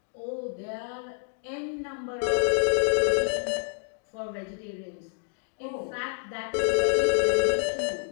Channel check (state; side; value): silent; right; 58 dB below the other